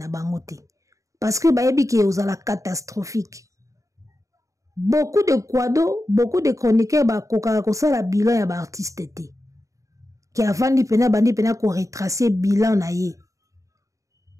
bango te. Parce que ba yebi ke ozala catastrophique. Beaucoup de kwado, beaucoup de chroniqueurs ba koka ko sala bilan ya ba artiste te. Qui avant bandi pena ko retracer bilan na ye.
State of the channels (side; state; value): left; late; 0.16 ms